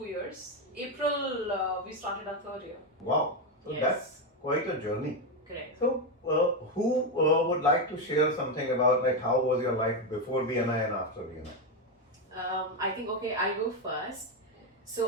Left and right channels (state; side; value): normal; both; correlation 0.08